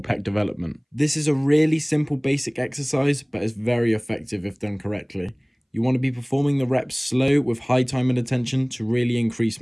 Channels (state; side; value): identical; both; correlation 1.00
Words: pec development. This is a really simple basic exercise, but it's very effective if done correctly. You want to be performing the reps slow with high time and attention to really increase